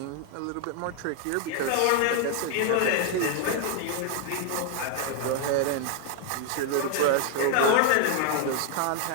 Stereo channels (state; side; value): different; both; correlation 0.00